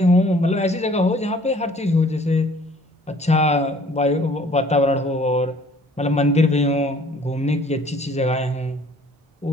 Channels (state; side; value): normal; both; correlation 0.55